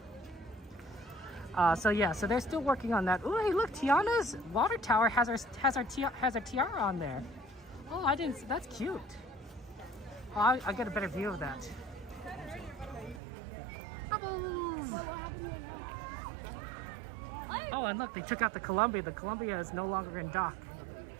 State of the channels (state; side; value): drops out; left; at 13.2 s